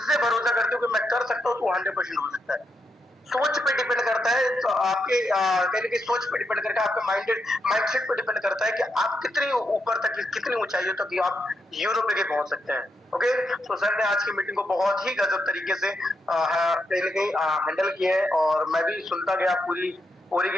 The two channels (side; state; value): both; normal; correlation 0.82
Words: से भरोसा करते हो कि मैं कर सकता हूँ, तो 100% हो सकता है। सोच पे डिपेंड करता है, तो आपके कहने की सोच पे डिपेंड करता है, आपके माइंडसेट पे डिपेंड करता है कि आप कितनी ऊपर तक, कितनी ऊंचाइयों तक आप यूरोप लेके पहुंच सकते हैं। ओके, तो सर ने आज की मीटिंग को बहुत ही गजब तरीके से कहीं ना कहीं हैंडल किया है, और मैं भी सुनता गया पूरी